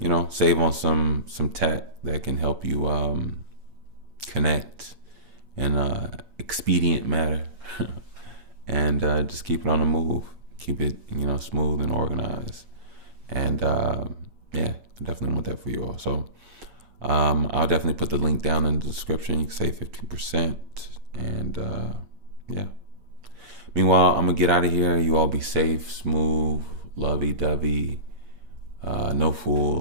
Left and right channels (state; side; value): late; left; 8.6 ms